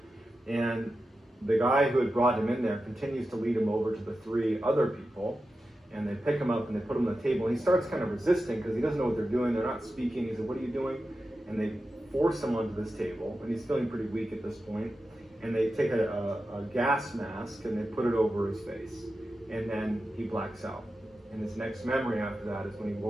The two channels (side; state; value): both; normal; correlation 0.91